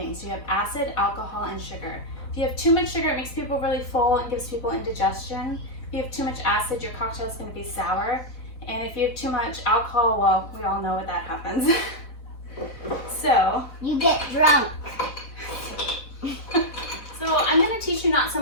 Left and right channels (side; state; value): right; late; 4.0 ms